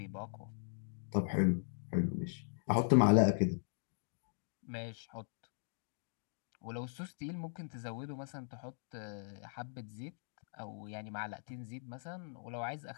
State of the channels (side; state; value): right; silent; digital silence